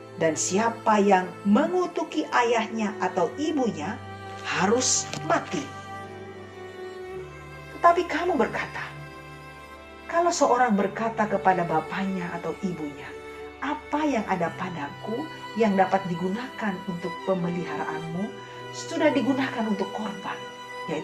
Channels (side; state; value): both; identical; correlation 1.00